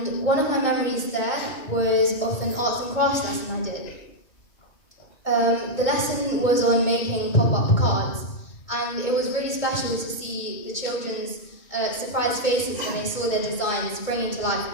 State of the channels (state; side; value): late; right; 2.2 ms